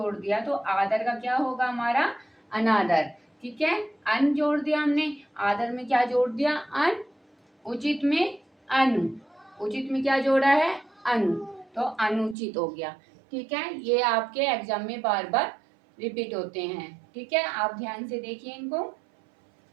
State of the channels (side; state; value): left; drops out; at 12.4 s